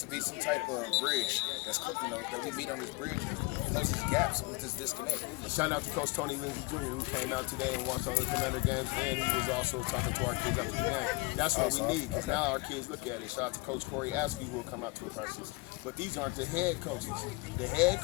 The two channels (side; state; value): right; quieter; 25.0 dB